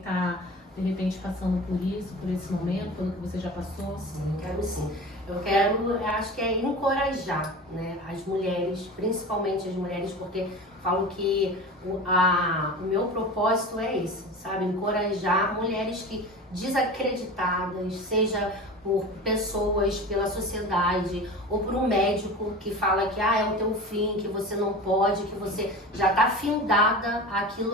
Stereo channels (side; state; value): both; normal; correlation 0.33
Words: de repente, passando por isso, por esse momento, pelo que você já passou? Sim, quero sim. Eu acho que é encorajar, né, as mulheres, principalmente as mulheres, porque falo que o meu propósito é esse, sabe? Encorajar mulheres que desacreditadas, seja por pessoas, pela sociedade, ou por um médico que fala que é o teu fim, que você não pode, que você já está findada